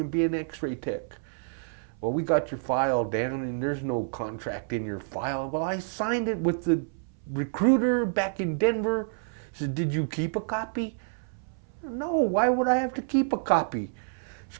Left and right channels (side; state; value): left; silent; 59 dB below the other